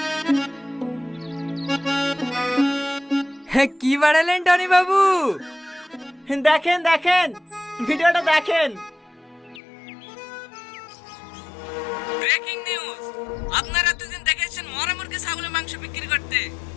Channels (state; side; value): drops out; right; at 9.6 s